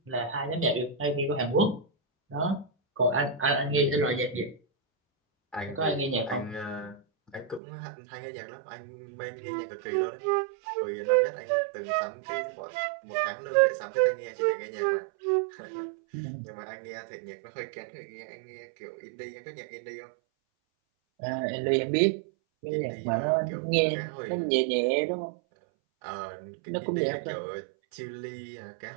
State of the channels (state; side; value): drops out; left; at 7.6 s